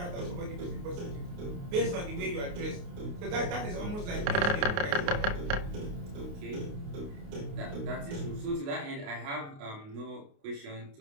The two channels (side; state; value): left; late; 29 ms